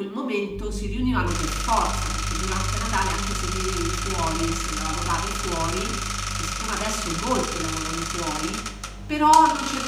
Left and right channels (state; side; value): identical; both; correlation 1.00